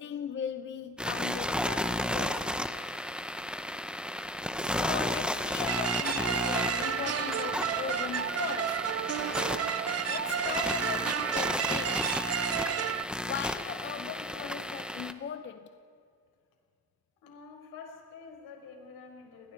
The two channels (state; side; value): normal; both; correlation 0.33